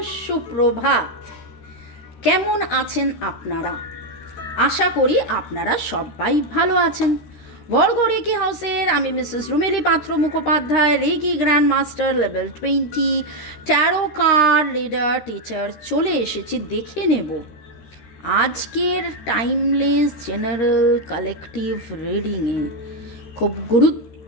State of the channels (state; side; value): late; right; 13 ms